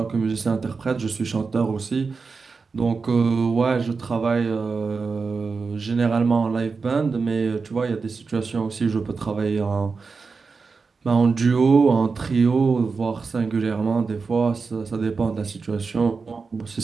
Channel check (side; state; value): left; quieter; 4.7 dB